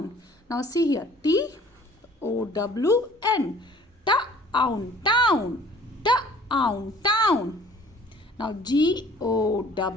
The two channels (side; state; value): both; normal; correlation 0.52